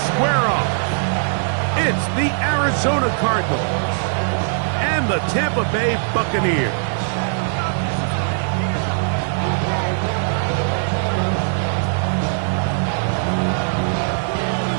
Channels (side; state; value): left; silent; digital silence